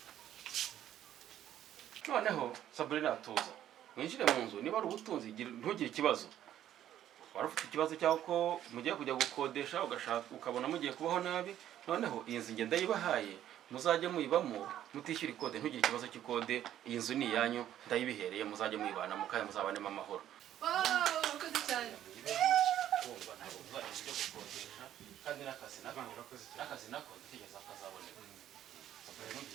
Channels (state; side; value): quieter; left; 11.6 dB